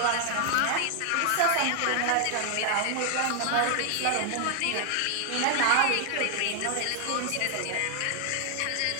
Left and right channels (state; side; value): different; both; correlation 0.00